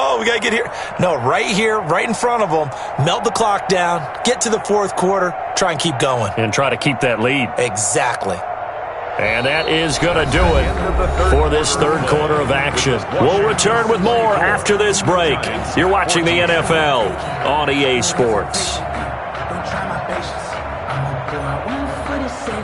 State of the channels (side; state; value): both; identical; correlation 1.00